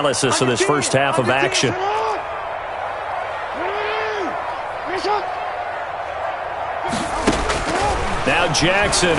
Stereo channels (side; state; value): both; identical; correlation 1.00